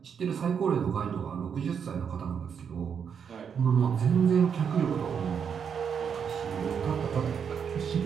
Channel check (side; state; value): left; quieter; 7.2 dB